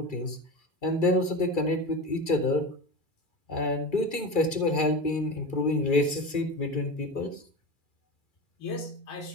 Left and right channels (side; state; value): right; late; 2.4 ms